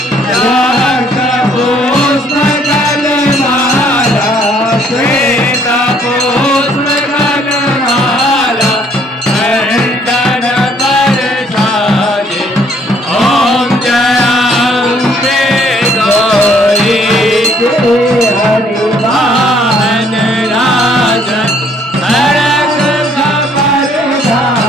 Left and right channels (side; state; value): both; normal; correlation 0.64